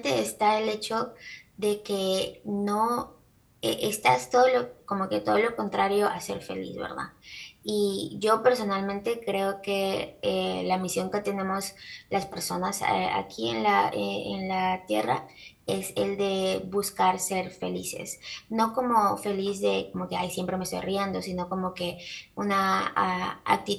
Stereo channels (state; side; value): identical; both; correlation 1.00